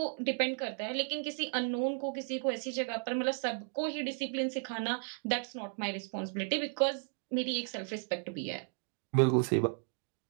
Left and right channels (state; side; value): silent; left; 55 dB below the other